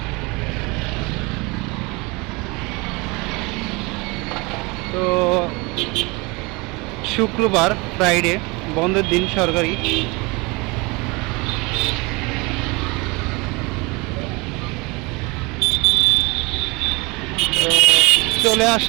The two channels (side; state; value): left; quieter; 26.1 dB